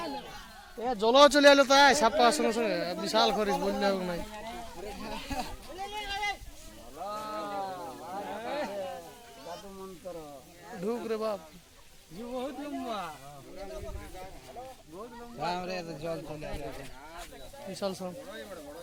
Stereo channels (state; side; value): identical; both; correlation 1.00